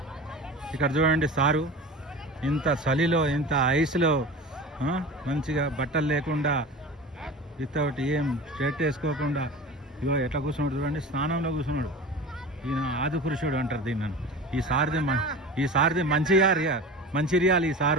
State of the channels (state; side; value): normal; both; correlation 0.34